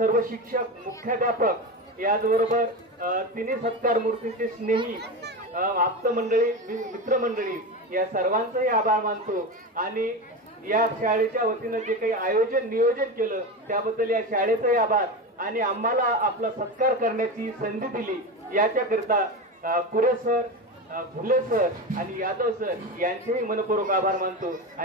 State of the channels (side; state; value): both; normal; correlation 0.21